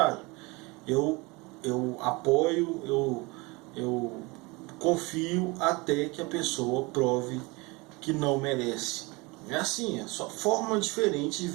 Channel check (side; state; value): left; quieter; 25.6 dB